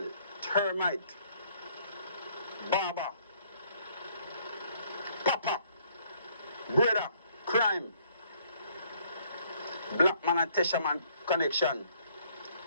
Termite, Baba, Papa, Brother, Crime, Black Man and Tesha Man connection,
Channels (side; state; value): both; inverted; correlation -0.64